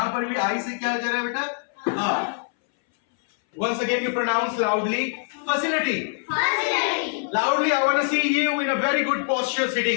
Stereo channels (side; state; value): right; silent; 61 dB below the other